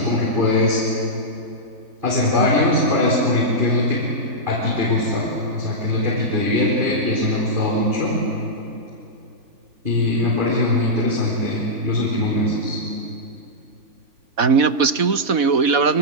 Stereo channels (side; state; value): left; late; 4.1 ms